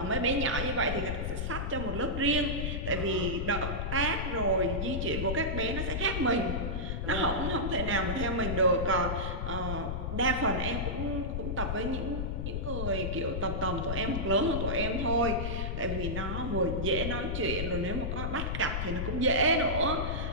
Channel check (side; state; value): left; noise; rumble, 2 dB below the sound